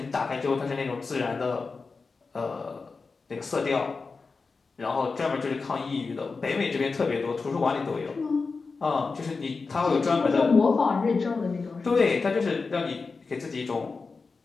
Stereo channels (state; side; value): quieter; right; 4.4 dB